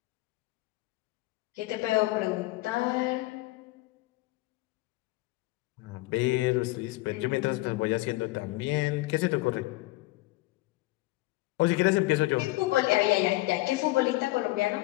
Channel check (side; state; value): right; quieter; 20.0 dB